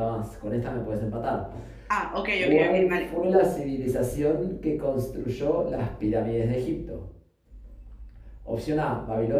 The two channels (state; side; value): identical; both; correlation 1.00